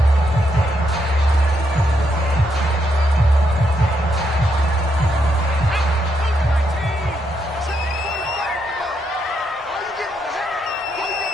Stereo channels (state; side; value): normal; both; correlation 0.79